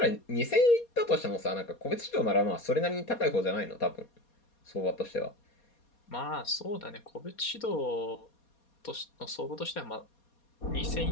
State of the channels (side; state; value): right; late; 4.2 ms